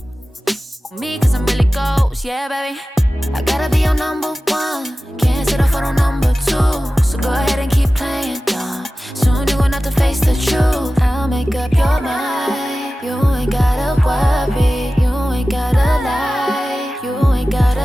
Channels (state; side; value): normal; both; correlation 0.96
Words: Me, cause I'm really ghost, yeah, baby. I gotta be your number one. Can't settle for no number two. So go ahead and keep playing dumb. Soon you gonna have to face the truth. I'll make up your mind. You ain't gotta worry. You ain't gotta lie. You ain't